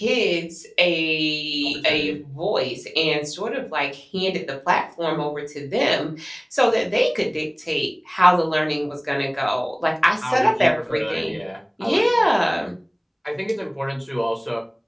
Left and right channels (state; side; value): identical; both; correlation 1.00